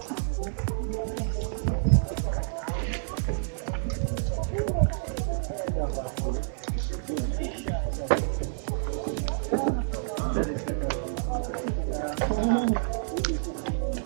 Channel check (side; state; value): left; silent; digital silence